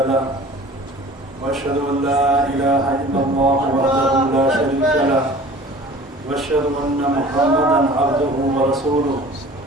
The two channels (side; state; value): both; normal; correlation 0.45